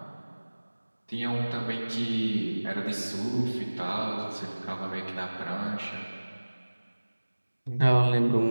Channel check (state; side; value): inverted; both; correlation -1.00